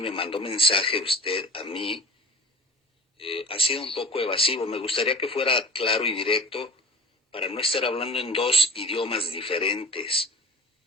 me mandó mensaje usted a mí, ha sido un poco evasivo. Me gustaría que fuera claro y directo para no estar hablando en 2 idiomas diferentes.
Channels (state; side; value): normal; both; correlation 0.39